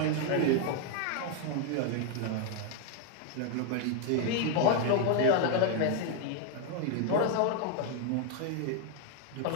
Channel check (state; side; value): different; both; correlation 0.01